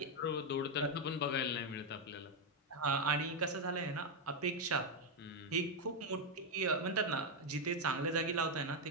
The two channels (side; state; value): both; normal; correlation 0.03